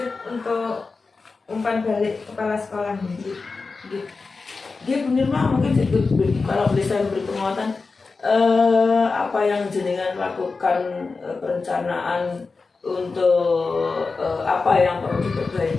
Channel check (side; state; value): right; quieter; 4.2 dB